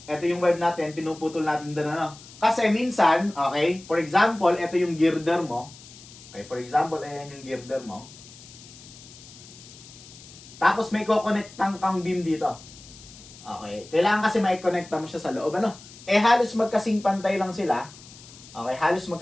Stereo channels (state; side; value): noise; left; hiss, 19 dB below the sound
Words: ito yung web natin, pinuputol natin doon, ano? Kasi minsan, okay, for example, ito yung girder mo. Okay, for example, ayan yung girder mo. Tapos may ko-connectang kang beam dito. Okay, kailangan kasi mai-connecta mo siya sa loob, ano? Halos magkasing pantay lang sila. Okay, halos